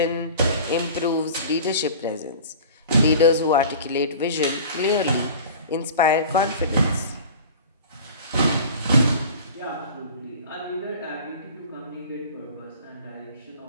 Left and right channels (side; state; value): both; inverted; correlation -0.40